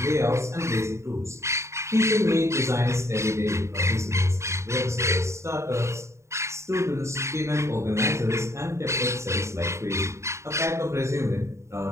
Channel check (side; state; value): left; late; 0.14 ms